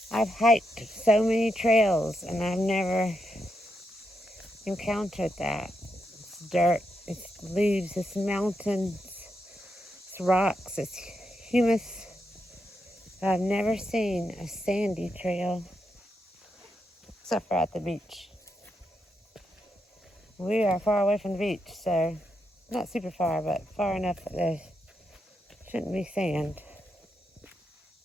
hiked so many trails and I've never encountered that. It's dirt, it's leaves, it's mountains, it's rocks, it's humus. I've never seen a sandy trail except for at the beach. We are far away from the beach, so not super far, but far enough that there shouldn't be sand.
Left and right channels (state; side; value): normal; both; correlation 0.83